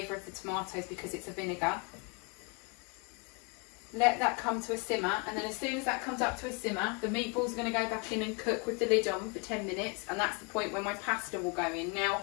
of the tomatoes because it's a vinegar. Let that come to a simmer, and then as soon as that comes up to a simmer, the meatballs are going to go back in and cook with the lid on for 10 minutes, and that's the point where my pasta will go in. Now,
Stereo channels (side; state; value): right; quieter; 32.5 dB